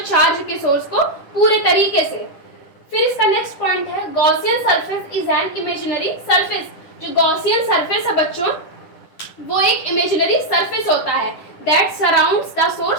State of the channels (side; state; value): right; late; 10 ms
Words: चार्ज के सोर्स को पूरे तरीके से। फिर इसका नेक्स्ट पॉइंट है Gaussian surface is an imaginary surface. जो गॉसियन सरफेस है बच्चों वो एक इमेजिनरी सरफेस होता है that surrounds the